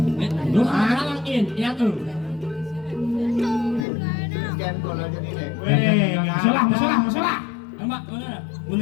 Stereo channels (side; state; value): right; drops out; at 3.9 s